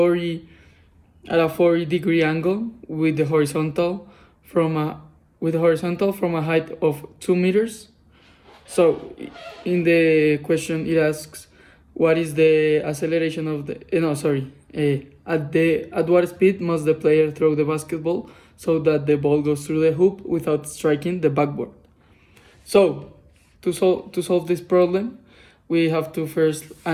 40-degree angle with the horizontal from a height of 2 meters. So in the question it asks what is the acceleration of the at what speed must the player throw the basketball so that the ball goes through the hoop without striking the backboard. So to solve this problem, we have to first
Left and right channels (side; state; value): both; identical; correlation 1.00